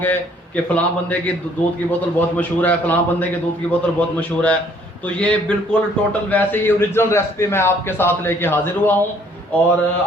कि फ़लाँ बंदे की दूध की बोतल बहुत मशहूर है, फ़लाँ बंदे की दूध की बोतल बहुत मशहूर है, तो ये बिल्कुल टोटल वैसे ही ओरिजिनल रेसिपी मैं आपके साथ लेके हाजिर हुआ हूँ। और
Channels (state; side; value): normal; both; correlation 0.61